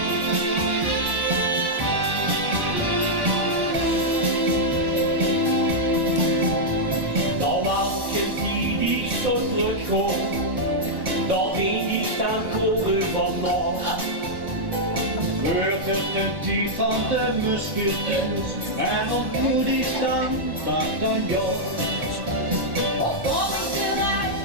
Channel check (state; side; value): late; left; 1.1 ms